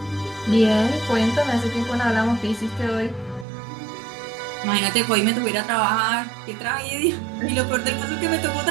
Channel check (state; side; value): drops out; left; at 3.5 s